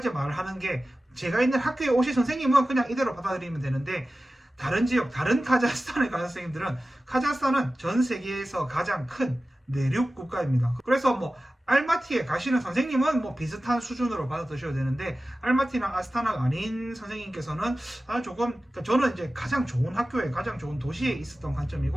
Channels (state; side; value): normal; both; correlation 0.95